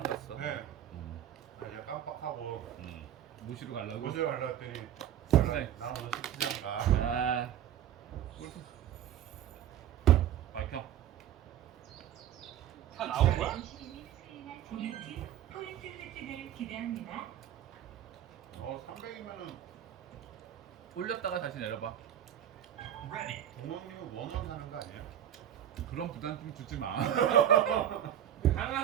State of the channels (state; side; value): quieter; left; 10.6 dB